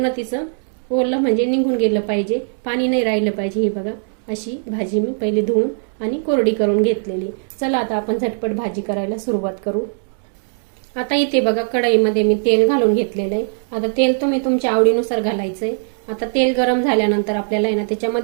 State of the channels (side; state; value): left; silent; digital silence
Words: तिचं ओलं म्हणजे निघून गेलं पाहिजे, पाणी नाही राहिलं पाहिजे। हे बघा, अशी भाजी मी पहिले धुवून आणि कोरडी करून घेतलेली। चला आता आपण झटपट भाजी करायला सुरुवात करू। आता इथे बघा, कढईमध्ये मी तेल घालून घेतलेलं आहे। आता तेल तुम्ही तुमच्या आवडीनुसार घालायचंय। आता तेल गरम झाल्यानंतर आपल्याला आहे ना